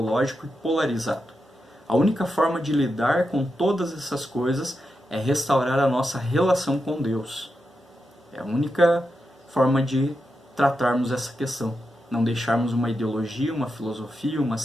e polarizado. A única forma de lidar com todas essas coisas é restaurar a nossa relação com Deus. É a única forma de tratarmos essa questão. Não deixarmos uma ideologia, uma filosofia, uma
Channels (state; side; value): normal; both; correlation 0.87